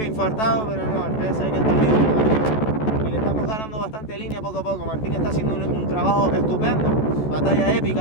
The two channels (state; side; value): late; right; 14 ms